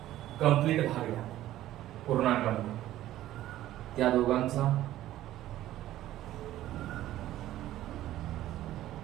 कंप्लीट भाग घ्या पूर्णांकामध्ये. त्या दोघांचा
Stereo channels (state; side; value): quieter; left; 14.0 dB